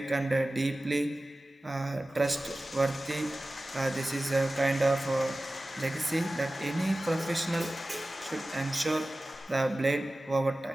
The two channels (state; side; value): normal; both; correlation 0.96